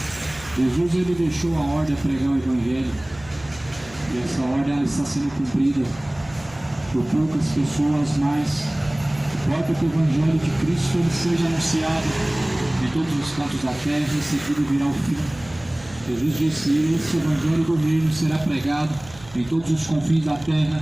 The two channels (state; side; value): noise; right; hum, 21 dB below the sound